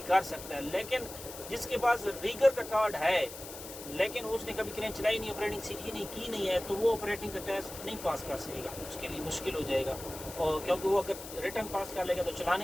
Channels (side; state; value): left; noise; hiss, 12 dB below the sound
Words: کر سکتا ہے. لیکن جس کے پاس ریگر کا کارڈ ہے لیکن اس نے کبھی کرین چلائی نہیں, آپریٹنگ سیکھی نہیں, کی نہیں ہے, تو وہ آپریٹنگ کا ٹیسٹ نہیں پاس کر سکے گا, اس کے لیے مشکل ہو جائے گا. اور کیونکہ وہ اگر ریٹرن پاس کر لے گا تو